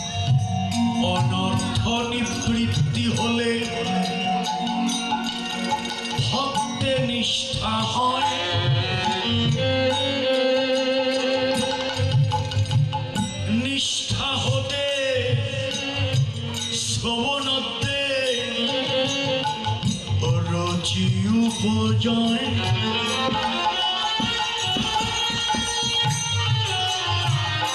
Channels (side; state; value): both; identical; correlation 1.00